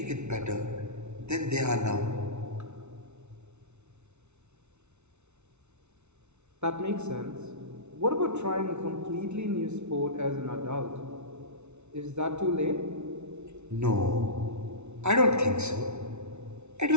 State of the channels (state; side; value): late; left; 0.82 ms